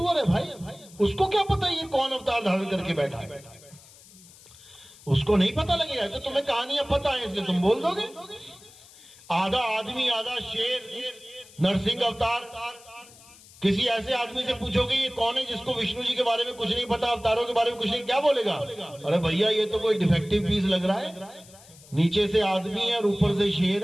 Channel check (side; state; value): left; noise; hiss, 23 dB below the sound